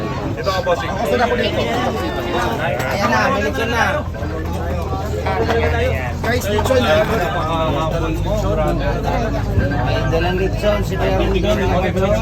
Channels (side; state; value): both; identical; correlation 1.00